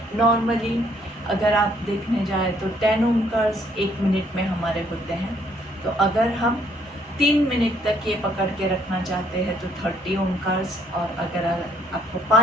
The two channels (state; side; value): normal; both; correlation 0.66